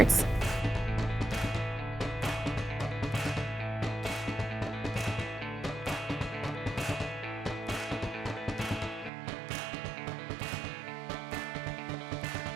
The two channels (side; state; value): left; drops out; at 9.1 s